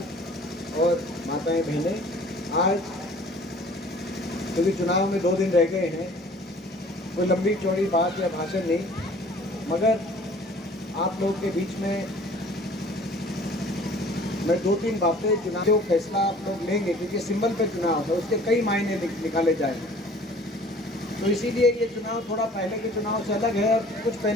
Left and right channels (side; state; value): both; normal; correlation 0.50